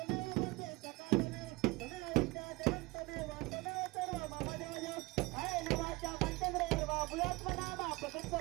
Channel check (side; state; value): left; quieter; 23.0 dB